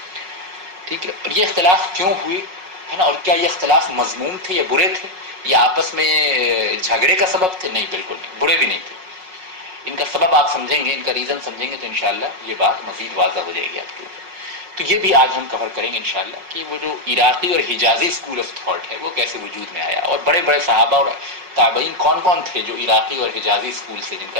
ٹھیک ہے۔ اور یہ اختلاف کیوں ہوئے، ہے نا، اور کیا یہ اختلاف مذموم تھے یا برے تھے یا آپس میں جھگڑے کا سبب تھے؟ نہیں، بالکل نہیں، برے بھی نہیں تھے۔ ان کا سبب آپ سمجھیں گے، ان کا ریزن سمجھیں گے تو انشاءاللہ یہ بات مزید واضح ہو جائے گی آپ کے اوپر۔ تو یہ بھی آج ہم کور کریں گے انشاءاللہ کہ وہ جو عراقی اور حجازی اسکول آف تھاٹ ہے وہ کیسے وجود میں آیا، اور بڑے بڑے صحابہ اور تابعین کون کون تھے جو عراقی اور حجازی اسکول سے جن کا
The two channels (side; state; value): left; late; 5.4 ms